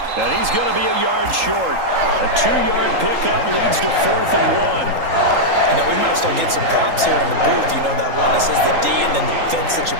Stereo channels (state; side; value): late; left; 3.8 ms